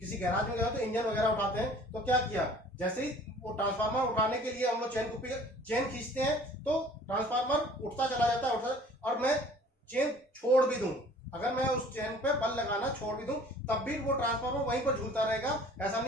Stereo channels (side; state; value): both; normal; correlation 0.51